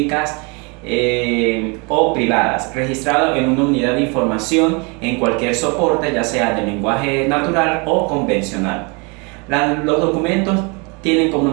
o privadas, registrado en una unidad de información en cualquier soporte, ya sea de lenguaje natural o convencional. Los documentos tienen como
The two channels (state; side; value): quieter; left; 31.0 dB